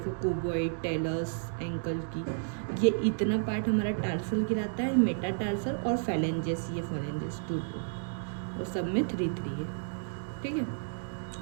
क्यूबॉइड, टेलस, एंकल की, ये इतना पार्ट हमारा टार्सल गिराता है, मेटाटार्सल और फेलेंजेस, ये फेलेंजेस 2 और सब में 3 है, ठीक है।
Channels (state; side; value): silent; left; digital silence